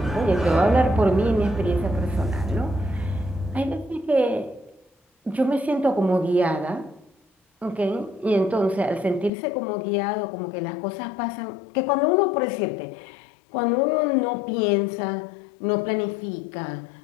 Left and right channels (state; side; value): drops out; right; at 9.3 s